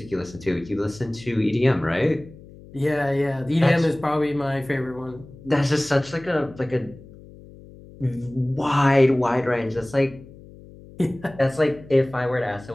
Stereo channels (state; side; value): noise; left; hum, 20 dB below the sound